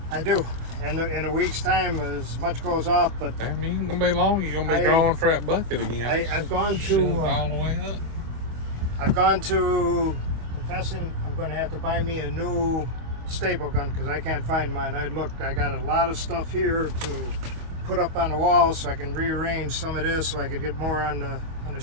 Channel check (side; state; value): left; late; 25 ms